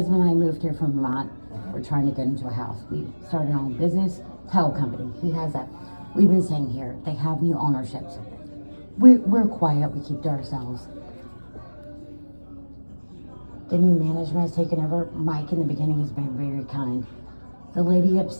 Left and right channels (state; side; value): inverted; both; correlation -1.00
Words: and I moved here from Vermont. We're trying to get into a house. We started our own business, title company. He has that. We've been staying here. They have new ownerships. We're quiet. We keep to ourselves. The new management has taken over. Mike in the beginning has been very kind. The lady